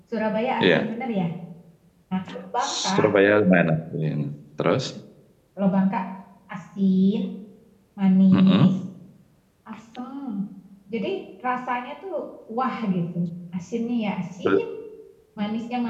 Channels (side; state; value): both; identical; correlation 1.00